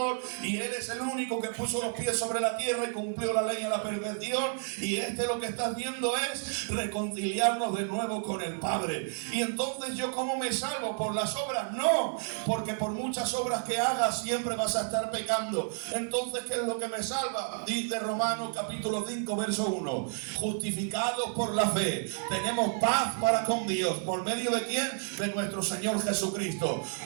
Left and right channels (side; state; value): left; silent; 57 dB below the other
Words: y Él es el único que puso los pies sobre la tierra y cumplió la ley a la perfección. Y lo que está haciendo es reconciliarnos de nuevo con el Padre. Y entonces, ¿yo cómo me salvo? ¿Por las obras? No, porque por muchas obras que hagas siempre vas a estar pecando. Entonces, ¿qué es lo que me salva? Dice Romanos capítulo 5 verso 1: justificados por la fe, tenemos paz para con Dios. ¿Por medio de quién? De nuestro Señor Jesucristo.